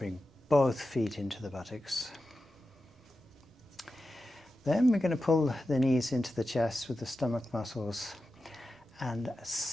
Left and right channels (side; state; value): both; normal; correlation 0.92